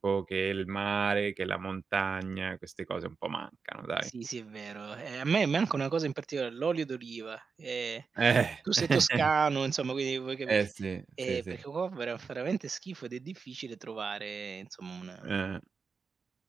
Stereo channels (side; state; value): left; quieter; 5.2 dB